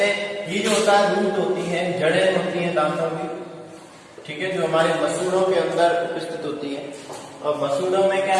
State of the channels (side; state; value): both; identical; correlation 1.00